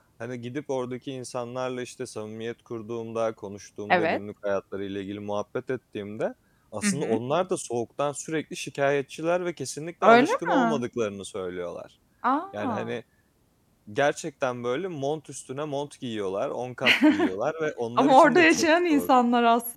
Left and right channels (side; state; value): both; identical; correlation 1.00